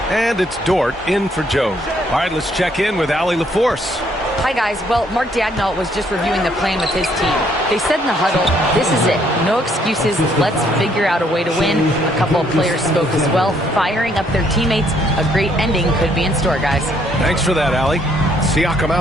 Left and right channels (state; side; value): normal; both; correlation 0.68